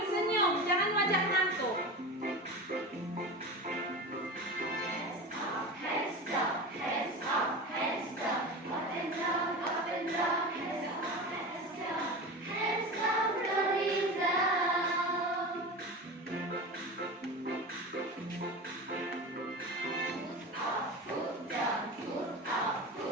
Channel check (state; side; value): normal; both; correlation 0.28